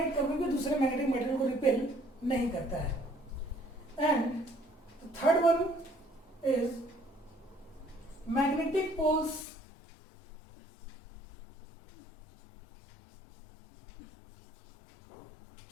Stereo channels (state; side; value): drops out; right; at 9.5 s